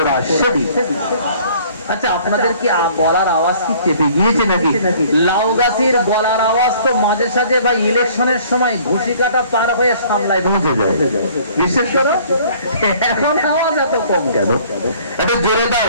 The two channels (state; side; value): inverted; both; correlation -0.55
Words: শরীফ। আচ্ছা, আপনাদের কি গলার আওয়াজ কি চেপে গিয়েছে নাকি? লাউ গাছের গলার আওয়াজ তো মাঝে সাঝে বা ইলেকশনের সময় ঘুষি কাটা পার হয়ে সামলায় পৌঁছে যায়, বিশেষ করে এখন আওয়াজ এত কম কেন? এটা জোরে